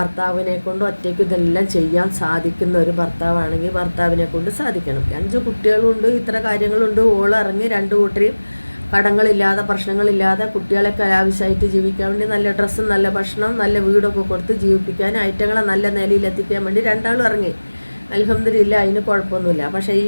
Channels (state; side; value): inverted; both; correlation -1.00